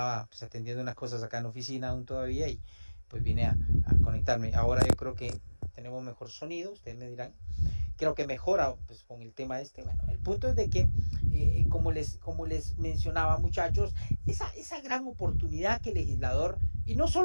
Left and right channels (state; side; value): inverted; both; correlation -1.00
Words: pues, atendiendo unas cosas acá en la oficina aún todavía y pues vine a conectarme. Ahora yo creo que tenemos mejor sonido, ustedes me dirán. Creo que mejora pues, con el tema este. Bueno, el punto es de que, como les mencionaba, muchachos, esa gran oportunidad que el legislador, y no